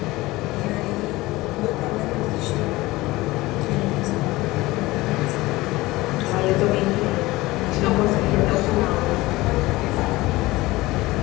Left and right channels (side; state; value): right; quieter; 19.7 dB